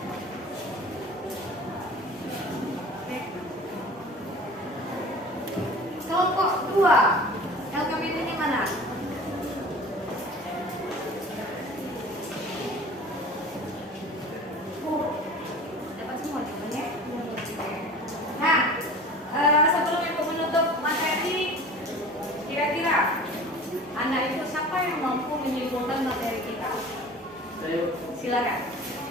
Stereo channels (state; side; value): normal; both; correlation 0.40